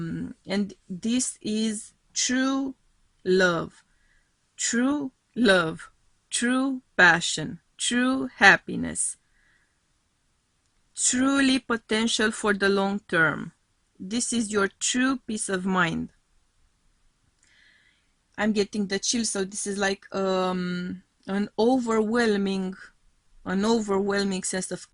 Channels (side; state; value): both; identical; correlation 1.00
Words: this is true love, true love, true passion, true happiness, truly potential for the long term. This is your true peace of mind. I'm getting the chill, so this is like an overwhelming sense of